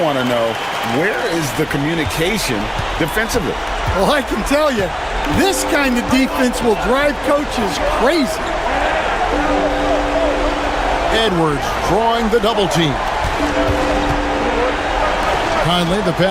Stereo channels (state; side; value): identical; both; correlation 1.00